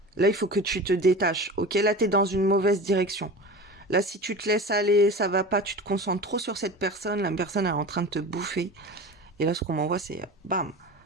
Là, il faut que tu te détaches. Ok, là, t'es dans une mauvaise direction. Là, si tu te laisses aller, ça va pas, tu te concentres trop sur cette personne, la personne elle est en train de te bouffer. Et là, ce qu'on m'envoie, c'est bam,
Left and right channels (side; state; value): both; normal; correlation 0.33